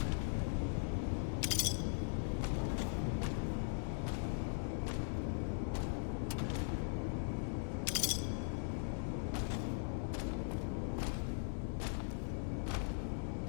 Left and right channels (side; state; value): right; silent; digital silence